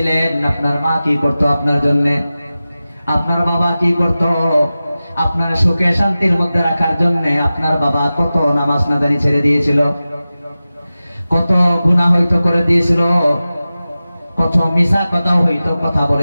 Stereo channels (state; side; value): inverted; both; correlation -0.95